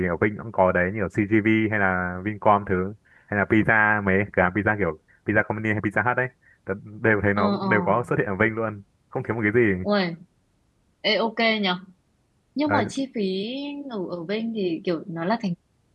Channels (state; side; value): identical; both; correlation 1.00